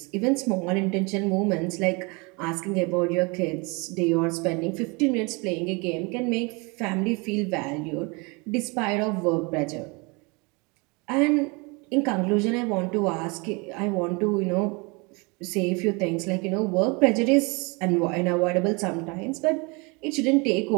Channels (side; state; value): left; quieter; 29.0 dB